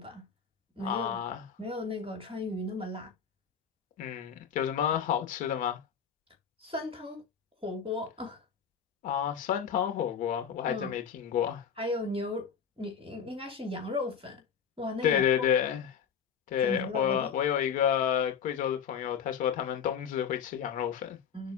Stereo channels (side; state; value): right; quieter; 7.4 dB